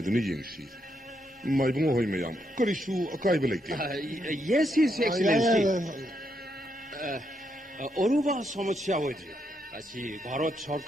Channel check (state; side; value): normal; both; correlation 0.79